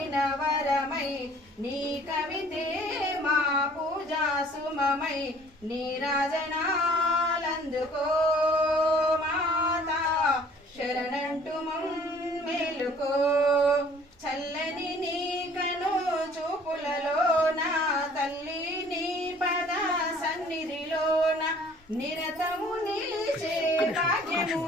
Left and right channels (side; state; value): both; normal; correlation 0.54